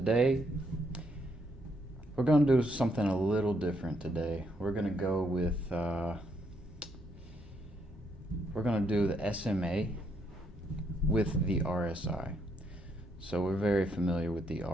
we're going to do something a little different today. We're going to go with, we're going to do the SMA with the RSI. So we're very familiar with the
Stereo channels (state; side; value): normal; both; correlation 0.74